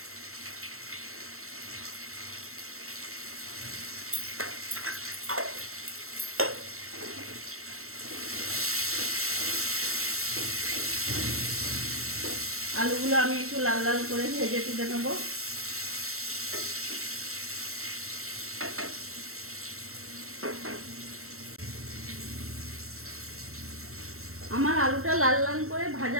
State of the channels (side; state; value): left; late; 0.63 ms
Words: আলুগুলো আমি একটু লাল লাল করে ভেজে তুলে নেব। আমার আলুটা লাল লাল করে